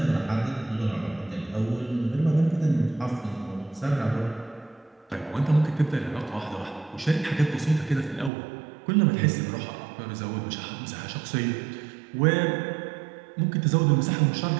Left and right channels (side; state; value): left; drops out; at 8.3 s